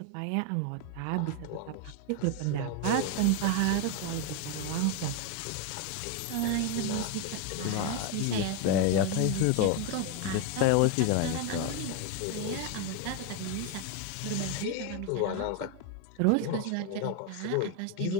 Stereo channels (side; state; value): both; different; correlation 0.01